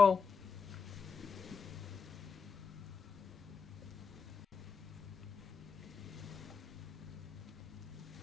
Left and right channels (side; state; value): right; quieter; 5.8 dB